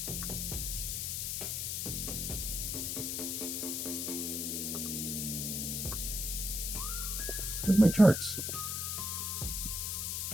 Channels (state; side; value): noise; left; hiss, 1 dB below the sound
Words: Where's my charts?